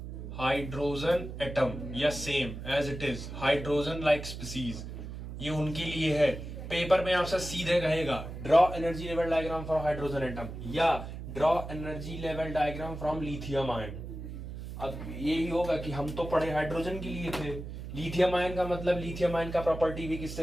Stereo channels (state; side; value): noise; right; hum, 9 dB below the sound